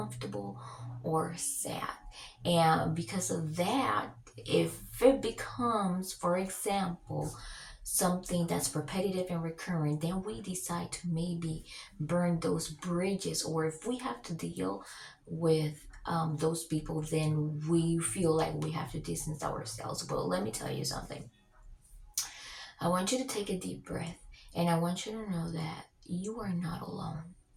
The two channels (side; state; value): both; identical; correlation 1.00